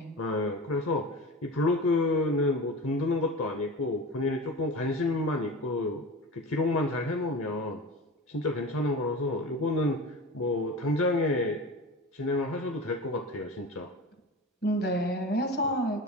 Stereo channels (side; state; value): both; normal; correlation 0.31